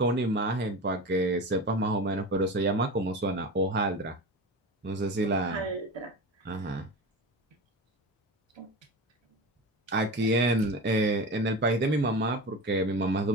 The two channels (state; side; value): normal; both; correlation 0.28